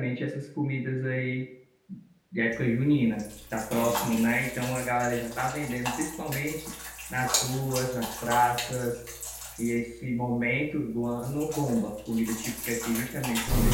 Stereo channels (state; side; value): identical; both; correlation 1.00